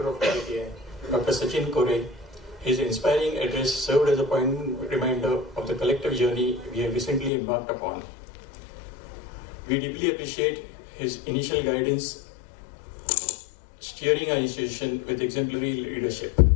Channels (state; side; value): drops out; right; at 7.3 s